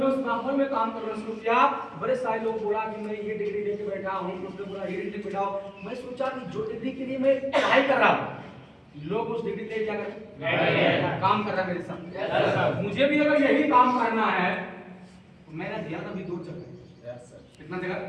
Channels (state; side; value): identical; both; correlation 1.00